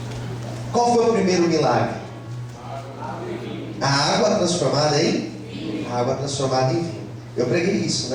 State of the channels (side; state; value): both; identical; correlation 1.00